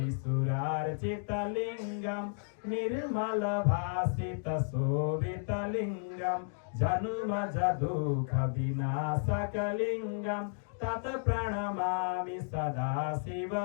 निर्मलभासितशोभितलिङ्गं जन्मजदुःखविनाशकलिङ्गं तत् प्रणमामि सदा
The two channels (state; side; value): silent; right; digital silence